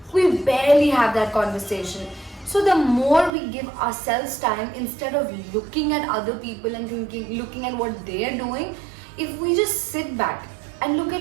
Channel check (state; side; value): drops out; left; at 3.3 s